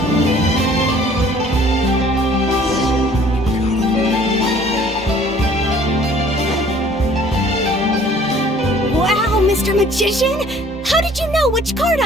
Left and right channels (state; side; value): normal; both; correlation 0.55